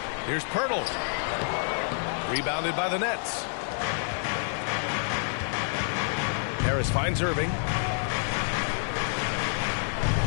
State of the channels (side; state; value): right; silent; 59 dB below the other